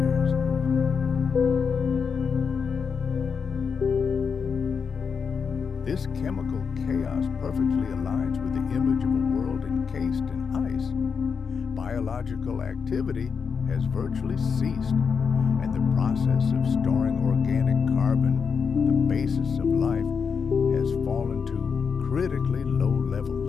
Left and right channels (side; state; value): right; quieter; 6.0 dB